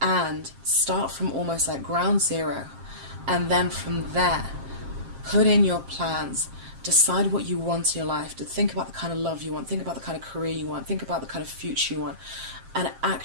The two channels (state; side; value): late; left; 7.5 ms